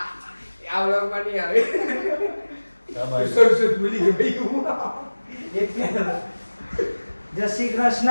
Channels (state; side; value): inverted; both; correlation -1.00